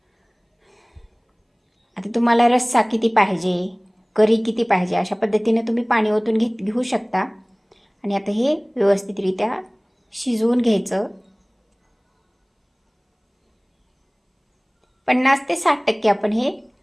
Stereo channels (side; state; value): both; identical; correlation 1.00